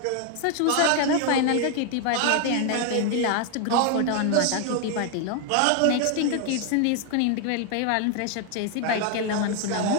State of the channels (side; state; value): both; different; correlation 0.00